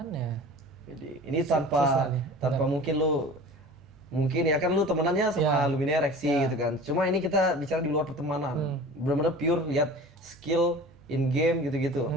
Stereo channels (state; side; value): normal; both; correlation 0.39